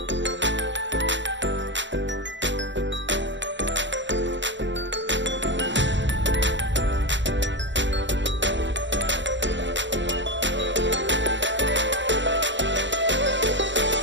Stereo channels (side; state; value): left; late; 0.53 ms